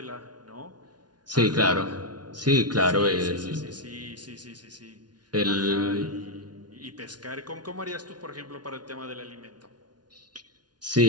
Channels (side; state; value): left; late; 0.69 ms